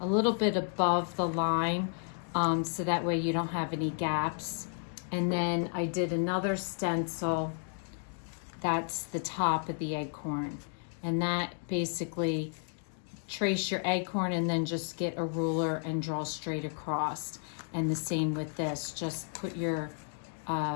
little bit above the line, so that way you don't have any gaps. And then I did another stencil that's the top of the acorn, and that basically trace your acorn and then just get a ruler and draw straight across. And the same with this, just put your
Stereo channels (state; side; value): silent; right; 56 dB below the other